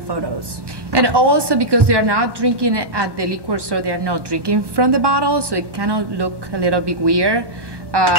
And also because they are not drinking at the liquor store, they are not drinking from the bottle, so it kind of look a little bit weird.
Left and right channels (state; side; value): late; left; 1.2 ms